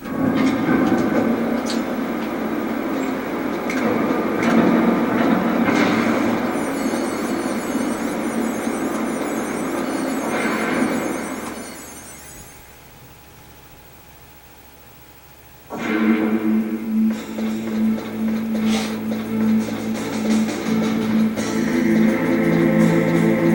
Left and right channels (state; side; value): identical; both; correlation 1.00